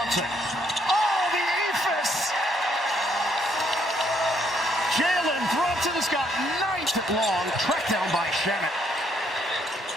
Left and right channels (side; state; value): both; normal; correlation 0.71